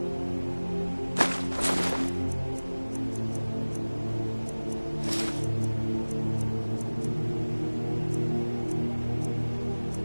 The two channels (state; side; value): inverted; both; correlation -1.00